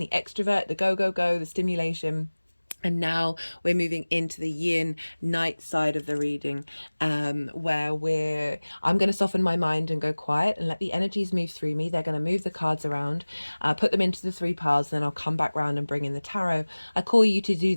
extrovert, the go, go, go, the stimulation. And now we're moving into the yin night side of the reading, where I'm going to soften my mind and go quiet and let the energies move through me. They're going to move the cards around, put them into the 3 piles, then I'll come back round and bring in the tarot. I call you to do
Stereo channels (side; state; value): both; inverted; correlation -1.00